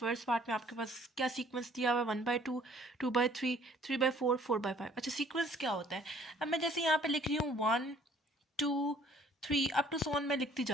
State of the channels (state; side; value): normal; both; correlation 0.58